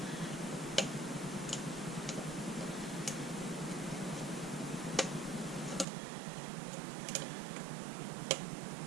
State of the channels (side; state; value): left; drops out; at 5.9 s